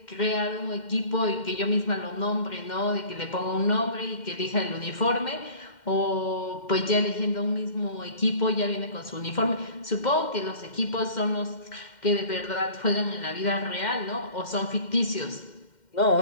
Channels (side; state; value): right; late; 2.1 ms